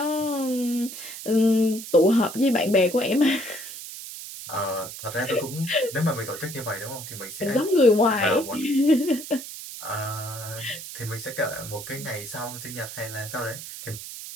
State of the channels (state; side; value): noise; right; hiss, 11 dB below the sound